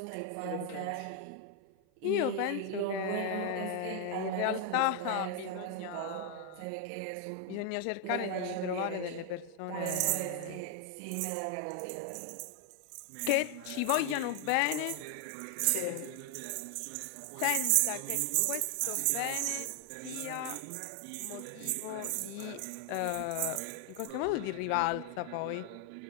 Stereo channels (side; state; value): both; different; correlation 0.00